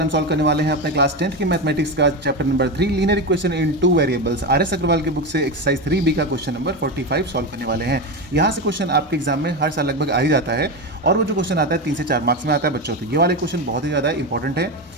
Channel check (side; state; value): both; normal; correlation 0.16